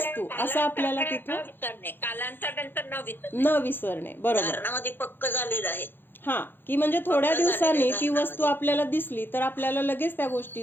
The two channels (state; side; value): late; right; 0.10 ms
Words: असं आपल्याला तिथं न विसरणे. बरोबर, पक्क झालेलं आहे. की म्हणजे थोड्या दिवसांनी ती वस्तू आपल्याला दिसली तर आपल्याला लगेच त्या